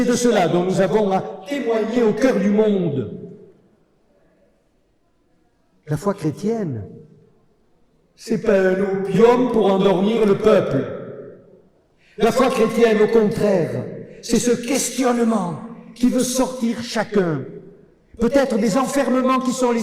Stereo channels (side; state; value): both; identical; correlation 1.00